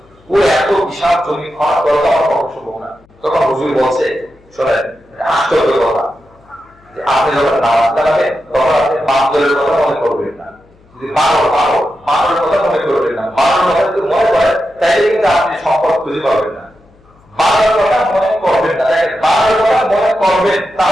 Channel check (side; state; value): left; noise; hum, 30 dB below the sound